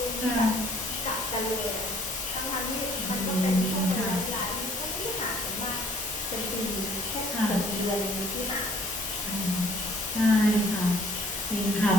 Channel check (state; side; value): normal; both; correlation 0.57